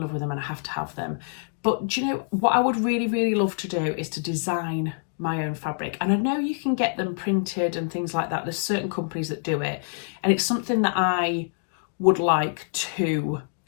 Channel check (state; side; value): silent; right; digital silence